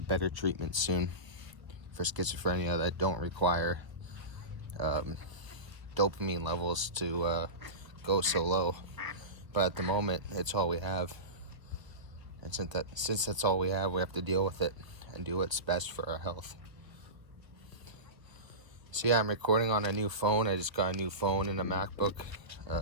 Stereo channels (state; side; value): late; left; 1.2 ms